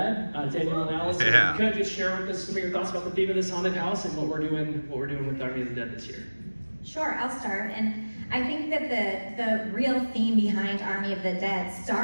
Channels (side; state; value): both; inverted; correlation -1.00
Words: Daniel and Alice, Yeah. Could you just share with us some of your thoughts about the theme of this haunted house and what we're doing with Army of the Dead this year? Sure, I'll start. And I think that the real theme behind Army of the Dead